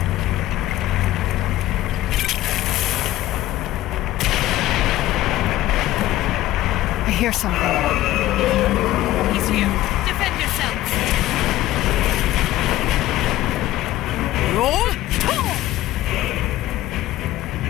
I hear something. He's here. Defend yourselves. Roll!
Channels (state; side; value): quieter; right; 15.2 dB